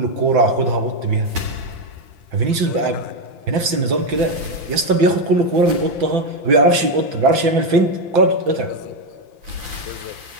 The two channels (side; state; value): left; late; 5.9 ms